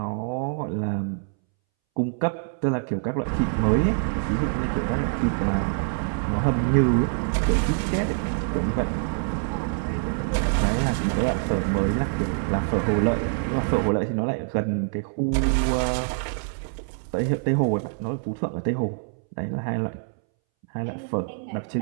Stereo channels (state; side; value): silent; left; 62 dB below the other